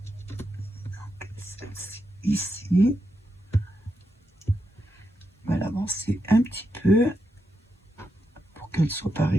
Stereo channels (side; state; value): both; normal; correlation 0.84